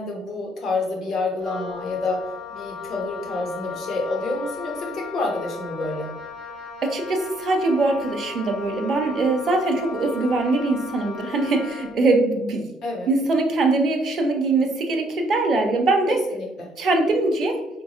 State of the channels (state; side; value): normal; both; correlation 0.67